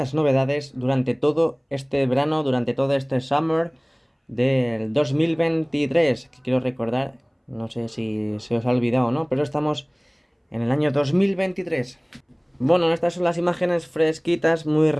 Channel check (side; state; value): both; identical; correlation 1.00